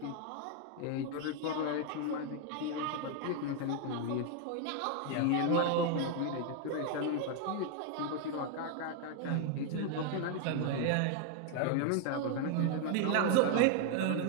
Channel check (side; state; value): both; different; correlation 0.01